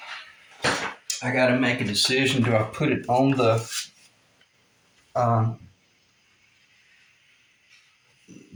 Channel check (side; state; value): both; identical; correlation 1.00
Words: got to make a decision. Do I put it on the